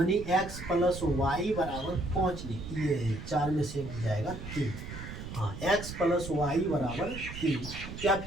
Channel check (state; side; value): noise; right; rumble, 9 dB below the sound